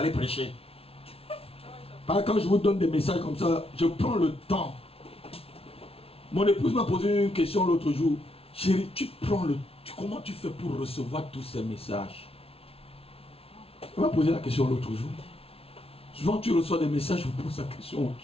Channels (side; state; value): right; late; 0.28 ms